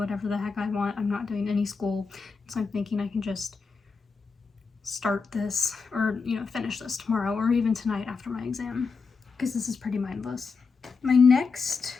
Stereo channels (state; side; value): quieter; right; 4.8 dB